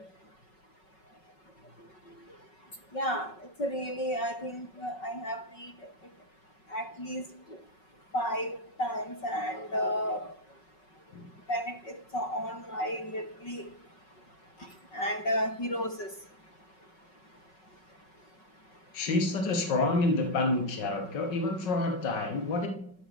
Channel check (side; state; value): right; late; 5.4 ms